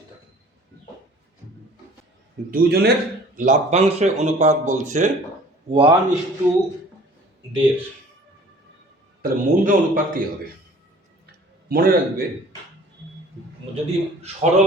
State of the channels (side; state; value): both; normal; correlation 0.49